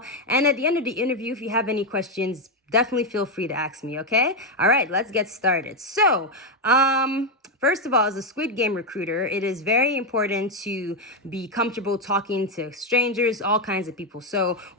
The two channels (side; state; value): both; normal; correlation 0.05